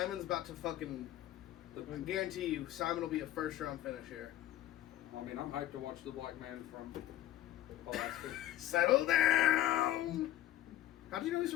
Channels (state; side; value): quieter; right; 13.5 dB